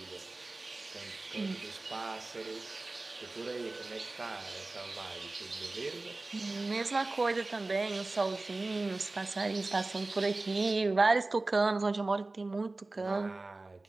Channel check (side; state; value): left; quieter; 3.2 dB